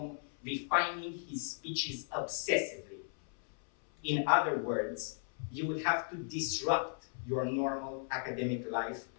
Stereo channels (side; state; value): right; silent; 54 dB below the other